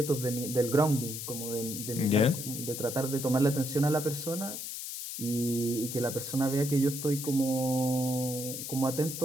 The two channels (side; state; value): left; noise; hiss, 7 dB below the sound